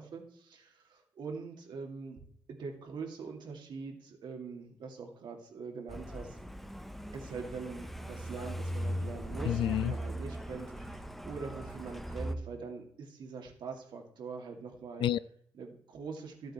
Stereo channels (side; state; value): both; normal; correlation 0.68